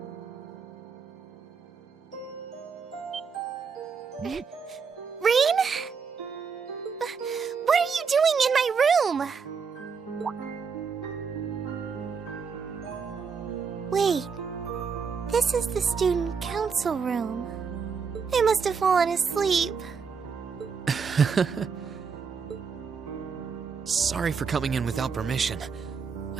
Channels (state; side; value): quieter; left; 5.8 dB